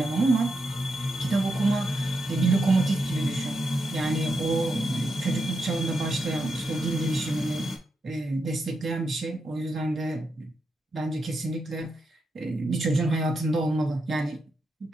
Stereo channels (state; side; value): normal; both; correlation 0.84